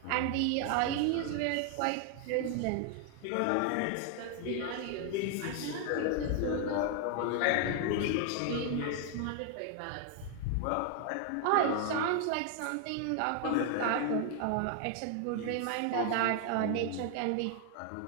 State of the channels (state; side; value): different; both; correlation 0.00